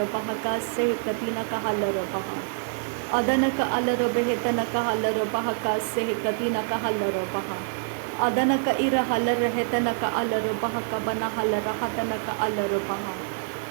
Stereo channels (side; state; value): left; silent; 60 dB below the other